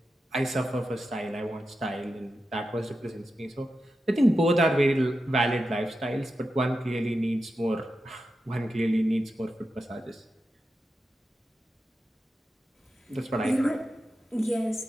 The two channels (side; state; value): both; normal; correlation 0.90